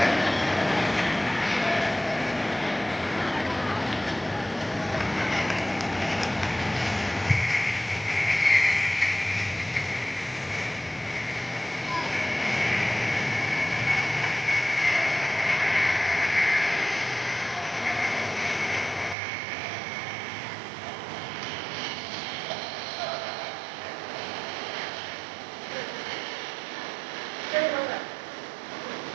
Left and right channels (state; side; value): drops out; left; at 19.2 s